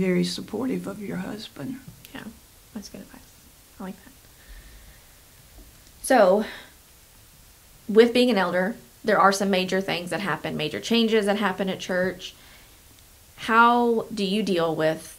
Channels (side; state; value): both; identical; correlation 1.00